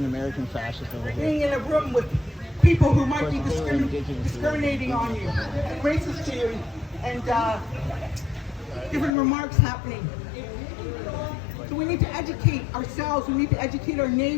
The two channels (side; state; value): right; drops out; at 9.1 s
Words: American fascist over here. Being in a room with people who might be discriminating on you, and racist to you, and different remarks happening. So we need to educate ourselves, we need to educate our